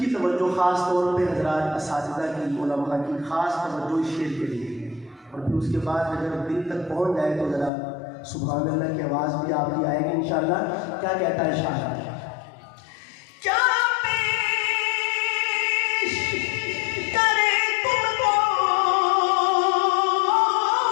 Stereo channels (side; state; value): right; drops out; at 7.7 s